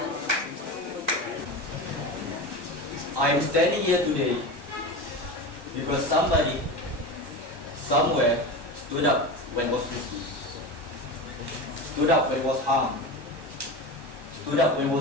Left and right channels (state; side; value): late; left; 1.1 ms